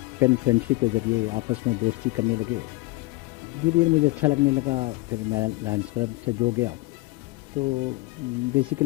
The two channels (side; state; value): right; quieter; 21.4 dB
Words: फ्रेंडशिप के ज़रिए आपस में दोस्ती करने लगे। धीरे धीरे मुझे अच्छा लगने लगा, फिर मैं लायंस क्लब से जुड़ गया। तो